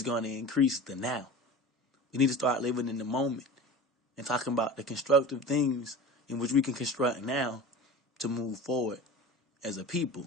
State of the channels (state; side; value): normal; both; correlation 0.35